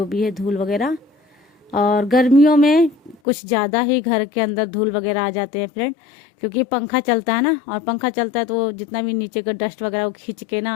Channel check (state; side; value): drops out; right; at 3.2 s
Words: भी है धूल वगैरह। और गर्मियों में कुछ ज़्यादा ही घर के अंदर धूल वगैरह आ जाते हैं फ्रेंड, क्योंकि पंखा चलता है ना, और पंखा चलता है तो जितना भी नीचे का डस्ट वगैरह वो खींच के